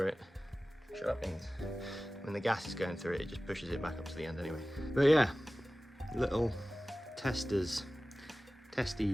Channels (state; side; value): normal; both; correlation 0.97